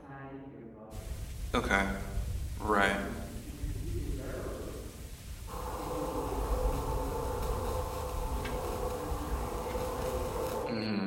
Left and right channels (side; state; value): both; identical; correlation 1.00